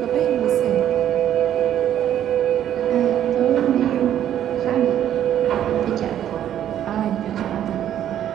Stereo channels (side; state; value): left; quieter; 10.8 dB